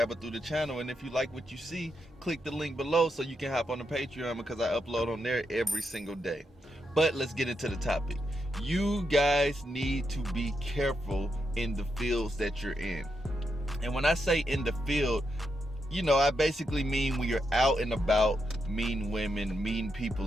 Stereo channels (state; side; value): normal; both; correlation 0.83